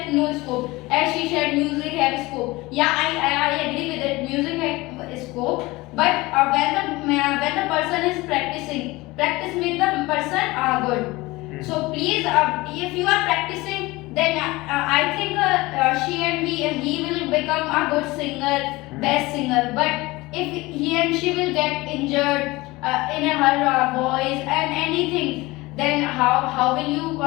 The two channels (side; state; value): right; quieter; 21.2 dB